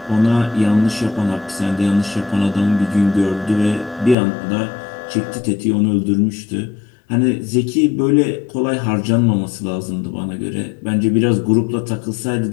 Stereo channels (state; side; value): drops out; right; at 4.2 s